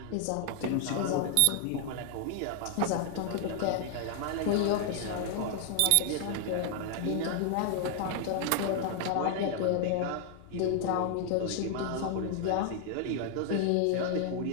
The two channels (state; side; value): different; both; correlation 0.00